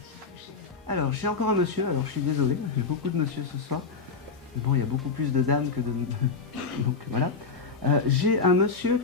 Alors, j'ai encore un monsieur, alors je suis désolé, j'ai beaucoup de monsieur ce soir. Bon, il y a beaucoup plus de dames que de... Donc voilà. J'ai un monsieur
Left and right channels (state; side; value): quieter; right; 4.9 dB